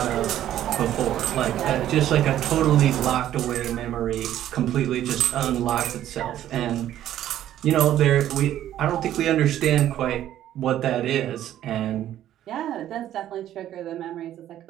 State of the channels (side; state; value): left; quieter; 12.1 dB